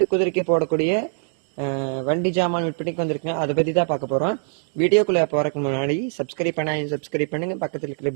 குதிரைக்கு போடக்கூடிய வண்டி ஜாமான் விற்பனைக்கு வந்திருக்குங்க. அதை பற்றி தான் பார்க்க போகிறோம். வீடியோக்குள்ளே போகிறதுக்கு முன்னாடி சப்ஸ்கிரைப் பண்ணுங்க, பக்கத்தில் இருக்கிற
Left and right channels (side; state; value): left; silent; digital silence